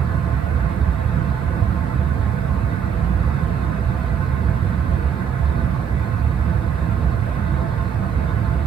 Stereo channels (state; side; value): quieter; left; 7.7 dB